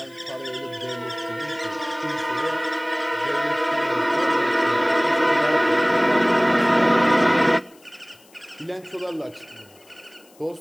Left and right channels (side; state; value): left; noise; hiss, 29 dB below the sound